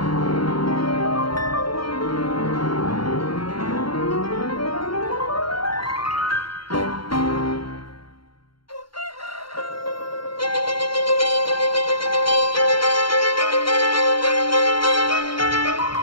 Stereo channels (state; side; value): late; right; 0.73 ms